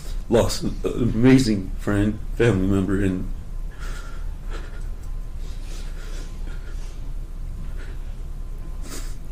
lost an amazing friend, family member, and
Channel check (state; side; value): identical; both; correlation 1.00